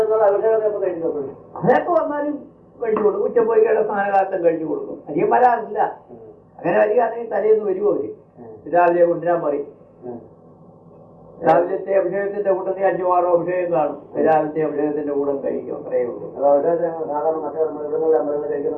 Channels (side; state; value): both; identical; correlation 1.00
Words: അഭിഷേകത്തെ കഴിഞ്ഞു. അതൊക്കെ വന്നാലും കഴിച്ചു കൊടുക്കും. ഉച്ചപ്പോയിക്കുള്ള സ്നാനകാലത്തും കഴിച്ചു കൊടുക്കും. അധികം വരാറില്ല. അങ്ങനെ വരികയാണെങ്കിൽ തലേന്ന് വരുമോ അവര്. രാവിലെ കൊണ്ടുവരാൻ പറയും. രാവിലത്തെ അഭിഷേകത്തിന്റെ കൂട്ടത്തിൽ 5-6 അഭിഷേകം കാണും. രാവിലത്തെ അഭിഷേകത്തിന്റെ കൂടെ കഴിക്കും. അത്രയേ ഉള്ളൂ. സാധാരണ മറ്റേ ഇവിടുന്ന്